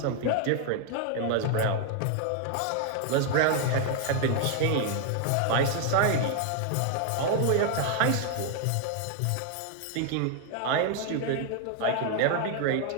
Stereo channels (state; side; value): different; both; correlation 0.00